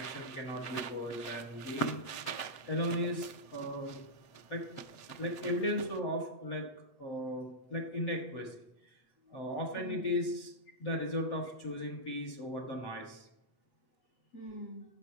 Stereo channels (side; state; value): right; late; 8.1 ms